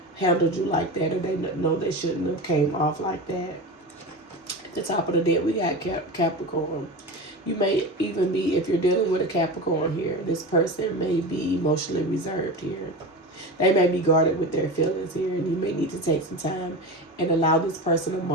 handled you like that, or they know they shouldn't have came off like that. At the top of the deck, we got Capricorn. You may even be, if you're dealing with a Capricorn here, this person may be emotionally reserved here. They may be guarded with their feelings here, and you may need to take some time and allow this person a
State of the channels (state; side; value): normal; both; correlation 0.27